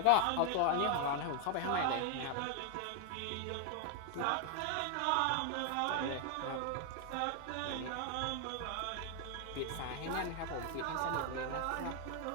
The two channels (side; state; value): both; different; correlation 0.00